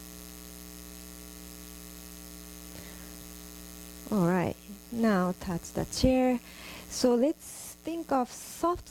Alright, now touch the chair. So let's think of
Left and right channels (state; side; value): identical; both; correlation 1.00